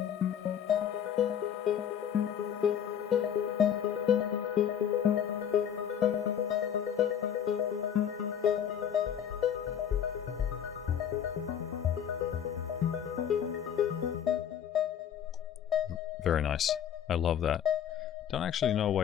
Very nice. I love that. Don't actually know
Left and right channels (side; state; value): right; quieter; 9.0 dB